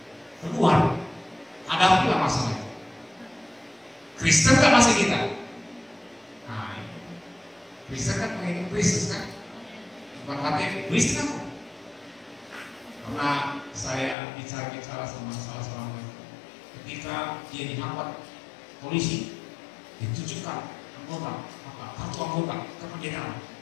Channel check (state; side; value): drops out; right; at 14.2 s